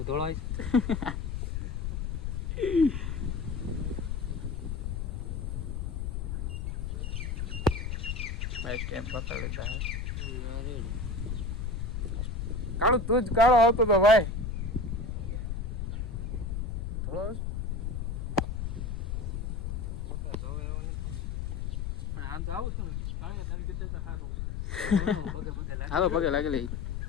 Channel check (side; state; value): left; noise; rumble, 2 dB below the sound